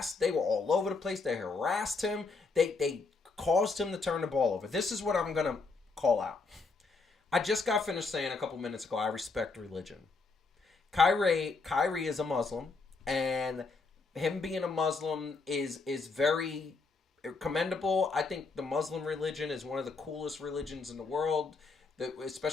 They were all over the place. They harassed him. They caused him to turn the ball over. This is what I'm gonna call out. I just got finished saying a couple minutes ago, I respect religion. Kyrie is a Muslim, and him being a Muslim is very commendable. I think the Muslim religion is one of the coolest religions in the world.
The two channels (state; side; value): quieter; right; 4.1 dB